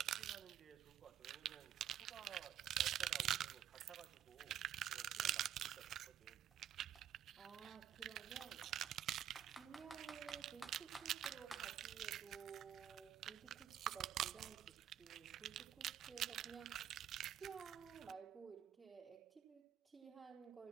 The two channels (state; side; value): quieter; left; 10.4 dB